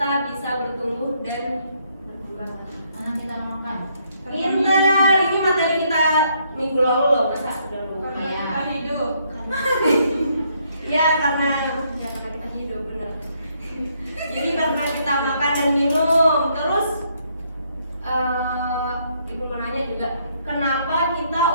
bisa bertumbuh dan berkembang? Karena kita makan. Pintar, ini materi kita minggu lalu loh, masa udah lupa Karena ya? kita hidup. Ya karena kita hidup benar. Jadi karena kita makan dan minum, terus ibu mau nanya juga, kenapa kita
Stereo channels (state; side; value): inverted; both; correlation -0.71